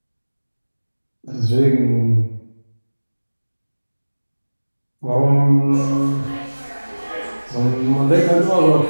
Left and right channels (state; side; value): inverted; both; correlation -1.00